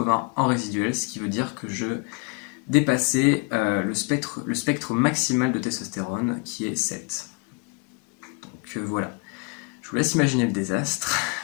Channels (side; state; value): right; quieter; 32.3 dB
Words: en résiduel, ce qui veut dire que je dépassais le spectre maximal de testostérone qui est 7. Donc voilà. Je vous laisse imaginer le désastre.